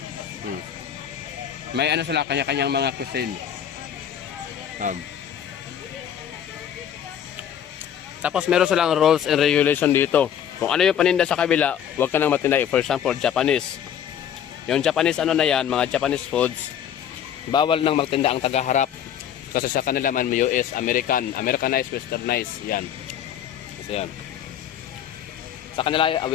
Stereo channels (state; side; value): quieter; right; 9.4 dB